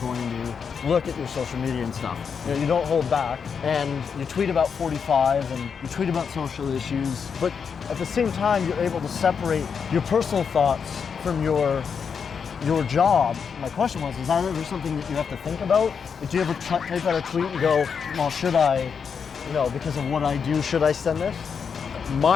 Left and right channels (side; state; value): right; quieter; 6.4 dB